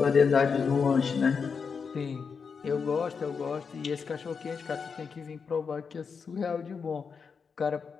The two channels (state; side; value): quieter; right; 5.7 dB